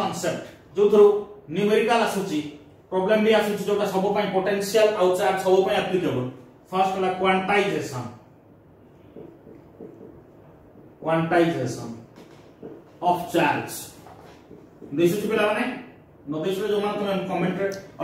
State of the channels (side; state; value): both; identical; correlation 1.00